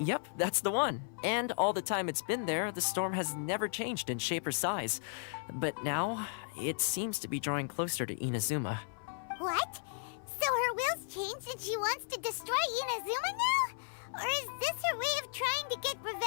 that's the one. And all the time it's been there, the storm has never changed in shape or size. But now, it seems to be drawing closer to Inazuma. What? So her will's changed and she wants to destroy Inazuma now? Or is this her way of trying to get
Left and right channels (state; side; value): silent; right; 54 dB below the other